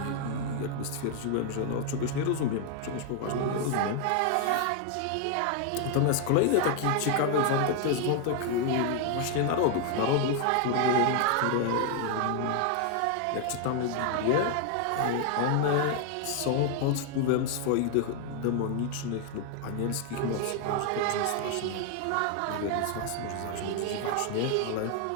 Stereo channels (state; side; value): different; both; correlation 0.00